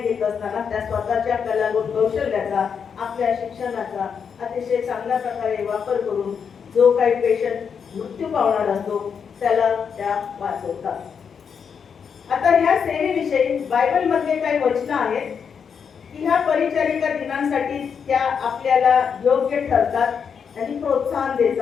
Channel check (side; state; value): right; quieter; 6.7 dB